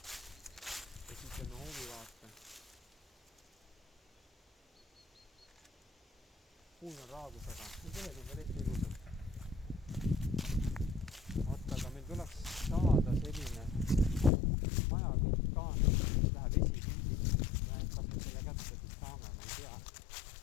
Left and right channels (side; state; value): right; drops out; at 14.3 s